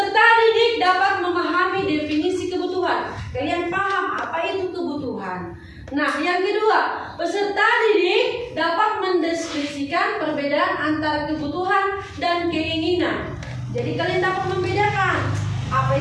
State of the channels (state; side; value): identical; both; correlation 1.00